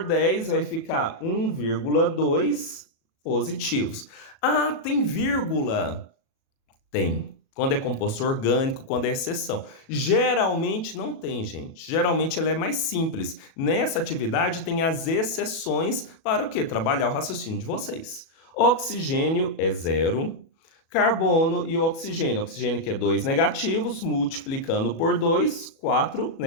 10, vai ficar 1,2 positivos. Ah, tem vírgula? Tem. Quando é composto orgânico, quando é exceção. Geralmente não tem, gente. Geralmente ela é mais simples. Nessa atividade tem as exceções para o quê? Trabalhar o raciocínio de vocês. Oxigênio é 0. Carbono e oxigênio. Oxigênio que é 2 negativos, multiplicando por 2, 4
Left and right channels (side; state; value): right; late; 37 ms